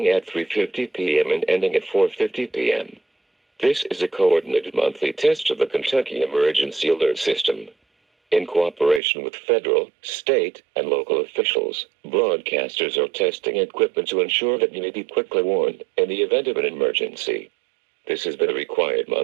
at 3:50 p.m. and ending at 4:50 p.m. This is a coordinated monthly test of the Kentucky Emergency Alert System. In cooperation with federal, state, and local officials, broadcasters are testing equipment to ensure that you may be quickly warned in the event of an emergency. This has been a required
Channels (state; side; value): drops out; left; at 9.0 s